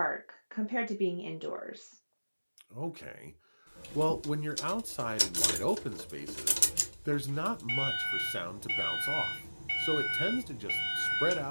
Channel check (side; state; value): both; inverted; correlation -1.00